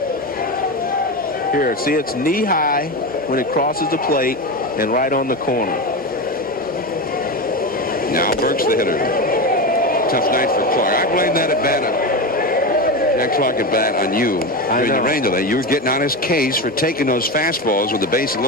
Here, see, it's knee-high when it crosses the plate and right on the corner. Now Burks the hitter. Tough night for Clark. I blame that at bat. Jack Clark at bat on you during the rain delay. You were getting on his case for taking those fastballs with the base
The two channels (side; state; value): both; normal; correlation 0.19